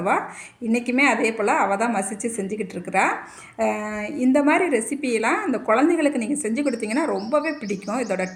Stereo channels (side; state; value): both; identical; correlation 1.00